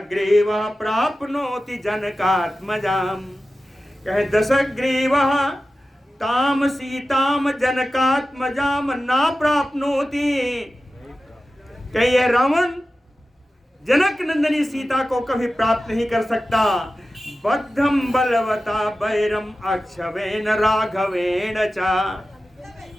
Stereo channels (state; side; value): normal; both; correlation 0.94